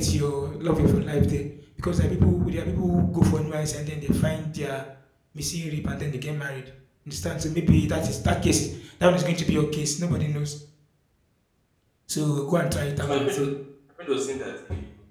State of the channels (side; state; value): both; identical; correlation 1.00